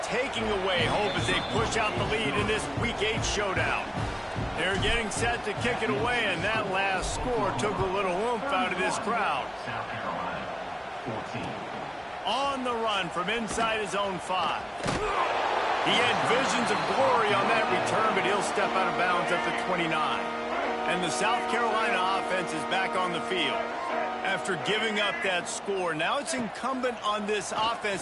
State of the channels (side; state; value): both; identical; correlation 1.00